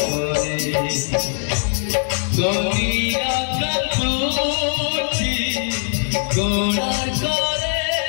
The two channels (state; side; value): silent; right; 65 dB below the other